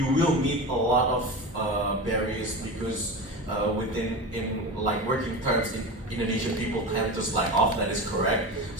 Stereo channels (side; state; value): both; normal; correlation 0.26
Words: will meet a lot of barriers because in like working terms, Indonesian people tend to slack off. That is correct.